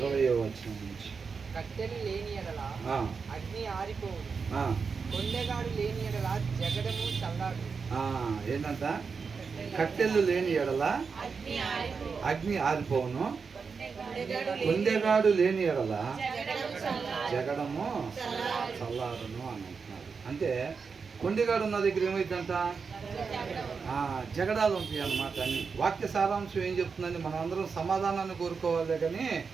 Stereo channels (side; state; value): left; quieter; 5.3 dB